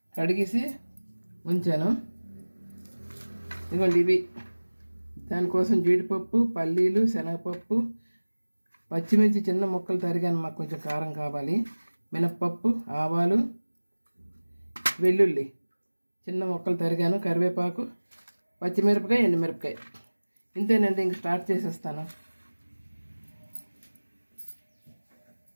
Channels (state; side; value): inverted; both; correlation -1.00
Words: కడిగేసి ఉంచాను. ఇదిగోండి ఇవి. దానికోసం జీడిపప్పు, పల్లీలు, శనగపప్పు, పచ్చిమిర్చి చిన్న ముక్కలు తరిగాను, మాకు కొంచెం కారం కావాలి. మినప్పప్పు, ఆవాలు, వెల్లుల్లి చిన్న ముక్కలు తరిగాను, కరివేపాకు, పచ్చిమిరపకాయ, ఎండుమిరపకాయ. ఇంతేనండి, ఇంక స్టార్ట్ చేసేస్తాను.